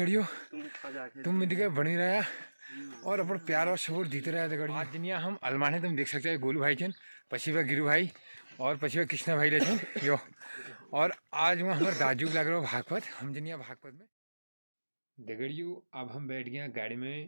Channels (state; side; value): inverted; both; correlation -1.00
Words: तुम मिलकर बनी रहा और अपन प्यार और सपोर्ट जीते रहा दगड़ियों। आज जनिया हम अलमाने तुम देख सकते हो गोलू भाई चन पछिवा गिरू भाई और पछिवा कृष्णा भाई लेचन यो। और आज वहाँ हमारे दाजू लग रहा भागवत हम जनिया भागवत में दगड़ियों। अब हम बैठ गए गाड़ी